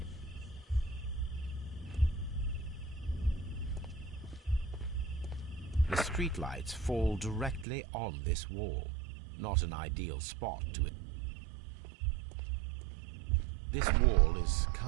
The streetlights fall directly on this wall. Not an ideal spot to it. This wall is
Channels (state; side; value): drops out; left; at 7.7 s